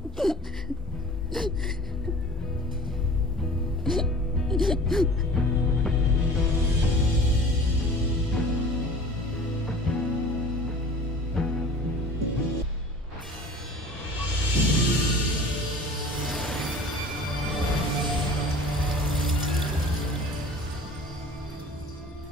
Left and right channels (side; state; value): both; normal; correlation 0.43